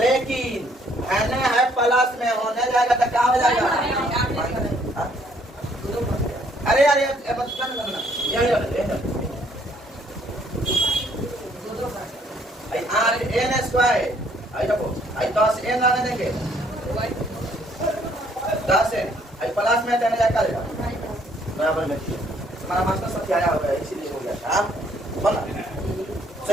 n है प्लस में होने जाएगा तो क्या हो जाएगा? हाँ? अरे यार ये बस कर ना ये आई आर एन स्क्वायर आई देखो आई 10 एन आने देंगे 10 एन आई प्लस में देने जाएगा बराबर में हमारा मास्टर सत्य आया होगा इसीलिए हो गया था बोला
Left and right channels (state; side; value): normal; both; correlation 0.65